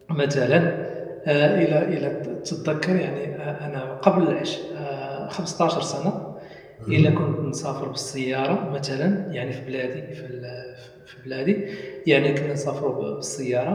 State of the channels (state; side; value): identical; both; correlation 1.00